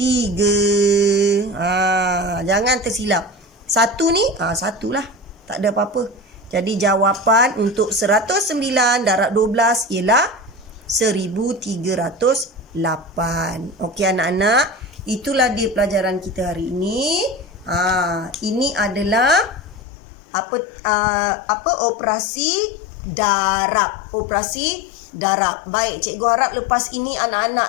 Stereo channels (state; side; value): drops out; right; at 19.8 s